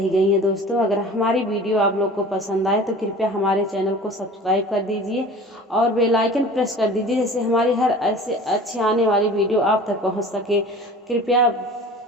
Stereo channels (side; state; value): both; normal; correlation 0.41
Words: गई है। दोस्तों अगर हमारी वीडियो आप लोग को पसंद आए तो कृपया हमारे चैनल को सब्सक्राइब कर दीजिए और बेल आइकन प्रेस कर दीजिए, जैसे हमारी हर ऐसे अच्छे आने वाली वीडियो आप तक पहुंच सके। कृपया